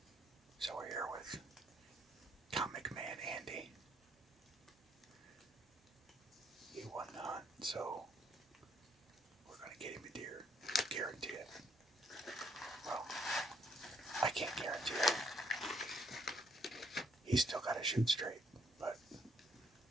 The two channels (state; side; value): normal; both; correlation 0.69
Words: So we're here with Comic Man Andy. He won the hunt, so we're going to get him a deer. Guarantee it. Well, I can't guarantee it. He's still got to shoot straight, but